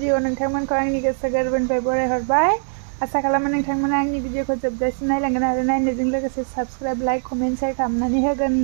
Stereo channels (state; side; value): silent; left; digital silence